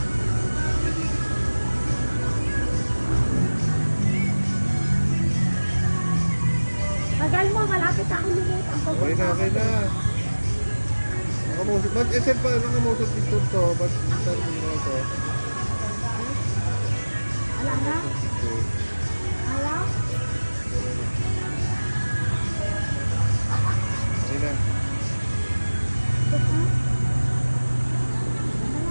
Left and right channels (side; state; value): both; inverted; correlation -1.00